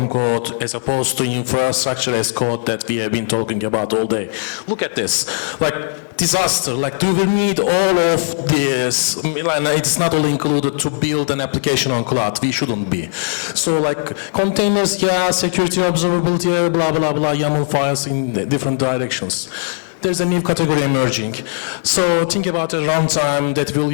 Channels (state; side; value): silent; right; digital silence